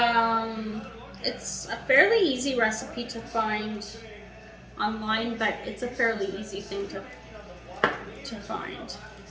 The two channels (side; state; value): both; identical; correlation 1.00